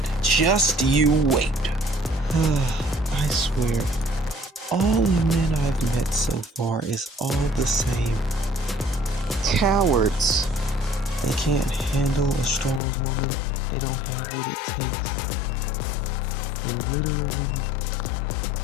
Just you wait. I swear, all the men I've met so far is all the same. Cowards. They can't handle a strong woman. They don't have what it takes. And literally,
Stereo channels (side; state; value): right; drops out; at 12.8 s